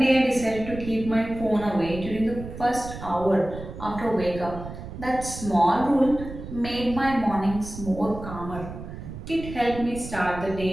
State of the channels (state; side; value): noise; right; rumble, 11 dB below the sound